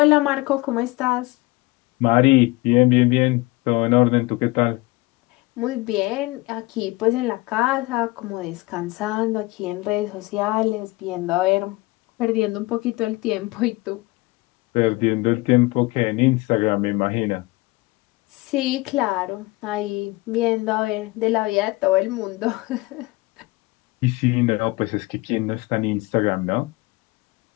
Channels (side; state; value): right; quieter; 21.9 dB